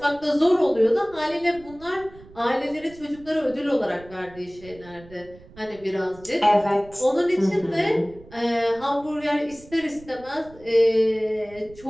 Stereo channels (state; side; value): noise; right; rumble, 22 dB below the sound